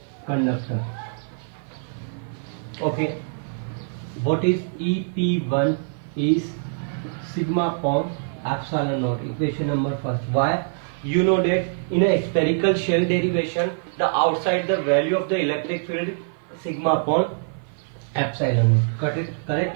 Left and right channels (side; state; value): left; silent; 55 dB below the other